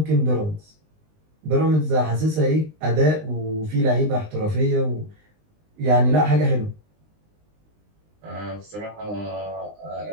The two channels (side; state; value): left; late; 19 ms